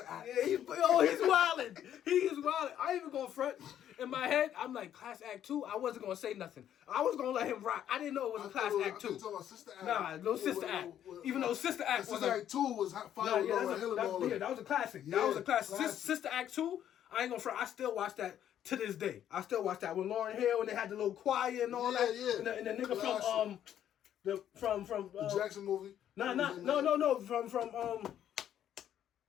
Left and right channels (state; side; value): quieter; right; 10.5 dB